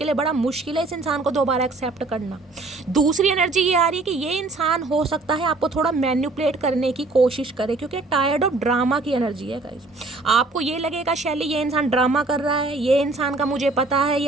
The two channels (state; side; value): quieter; left; 3.4 dB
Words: लिए बड़ा मुश्किल है इस इंसान को दोबारा एक्सेप्ट करना। दूसरी एनर्जी ये आ रही है कि ये इंसान हो सकता है आपको थोड़ा मैनिपुलेट करने की कोशिश करे, क्योंकि टायर्ड ऑफ ड्रामा की एनर्जी है गाइस। आपको ये लगेगा शैली ये इंसान ड्रामा कर रहा है, ये इंसान का मुझे पता है